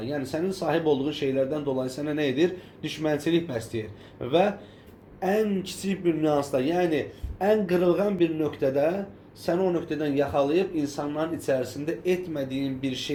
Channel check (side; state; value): both; identical; correlation 1.00